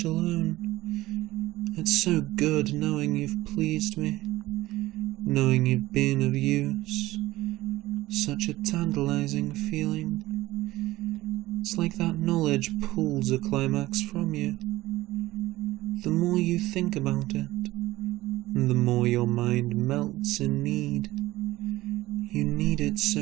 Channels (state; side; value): quieter; left; 17.5 dB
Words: alone. It's so good knowing you've pleased me, knowing you've been of use, such a tantalizing feeling. It's like that knowledge pulls a climax from you. The more you think about it, the more your mind melts in need. You need it